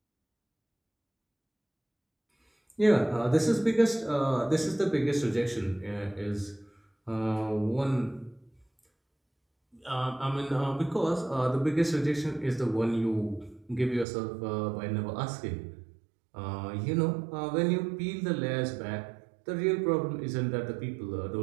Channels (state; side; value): drops out; left; at 14.1 s